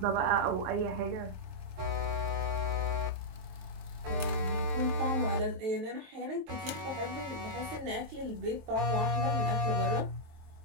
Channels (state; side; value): late; left; 23 ms